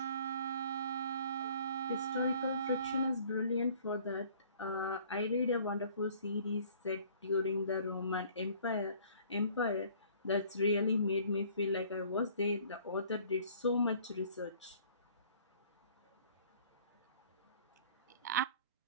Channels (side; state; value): both; inverted; correlation -0.54